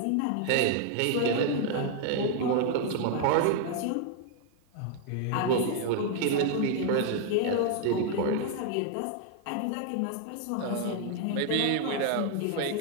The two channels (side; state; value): both; different; correlation 0.00